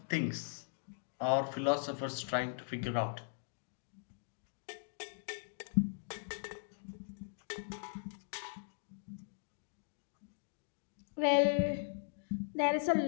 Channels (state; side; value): silent; right; digital silence